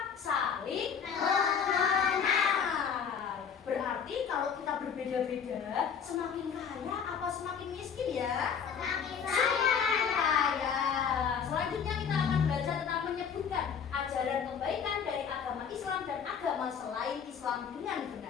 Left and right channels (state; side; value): quieter; right; 7.1 dB